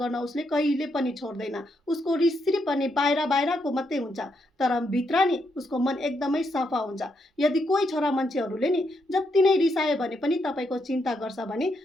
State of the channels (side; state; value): both; normal; correlation 0.79